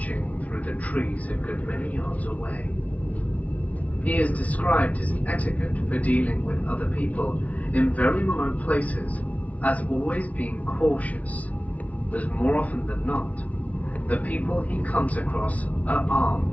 through the trees a good many yards away. He is described his etiquette for dealing with other people in very remote places as always being cautious, as more often than not, the people he comes across are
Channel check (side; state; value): right; late; 0.069 ms